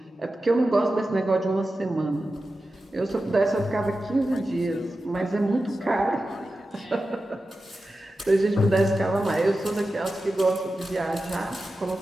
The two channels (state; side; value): normal; both; correlation 0.93